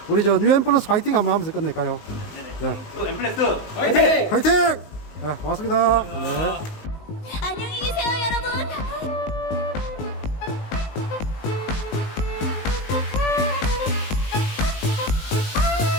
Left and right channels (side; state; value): right; late; 19 ms